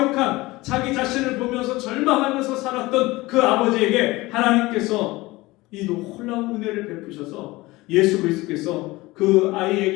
자기 자신을 보면서 절망하면서 살았던 그 아버지에게 하나님께서 이 놀라운 은혜를 베푸셔서 예수 그리스도께서 그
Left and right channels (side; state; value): right; quieter; 20.5 dB